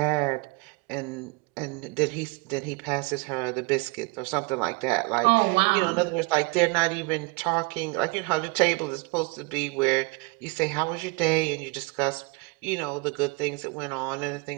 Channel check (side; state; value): left; quieter; 27.2 dB